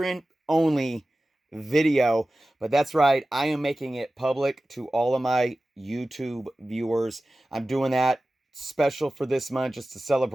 only video. But that's right, I am making it public to all of my YouTube viewers. I'm doing that special for this month just to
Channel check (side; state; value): both; normal; correlation 0.96